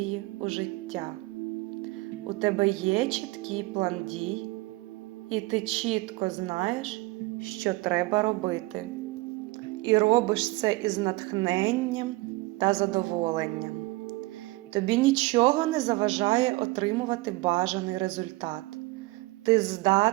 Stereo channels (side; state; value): left; quieter; 21.7 dB